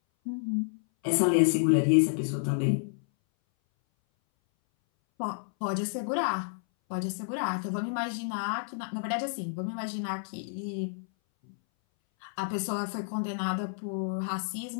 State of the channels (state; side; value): silent; right; 58 dB below the other